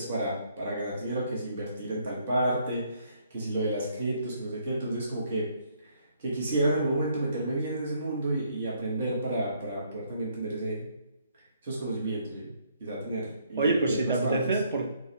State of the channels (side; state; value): both; inverted; correlation -0.68